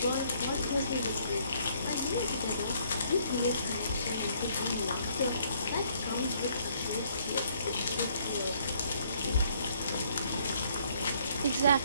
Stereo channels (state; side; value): inverted; both; correlation -0.65